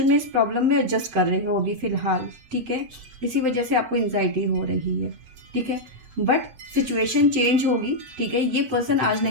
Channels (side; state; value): left; late; 8.1 ms